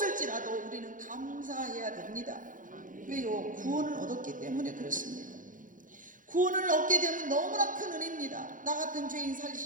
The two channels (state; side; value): late; left; 0.38 ms